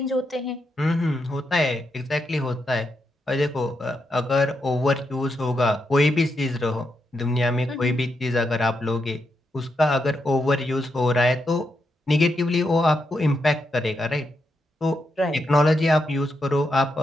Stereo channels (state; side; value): normal; both; correlation 0.83